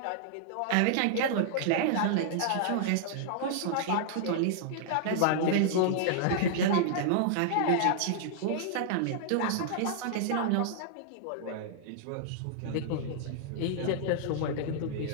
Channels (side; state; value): both; different; correlation -0.01